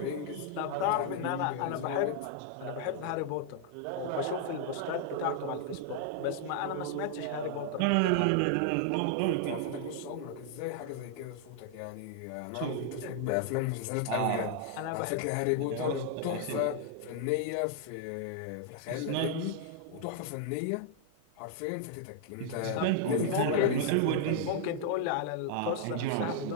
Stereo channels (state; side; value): different; both; correlation -0.01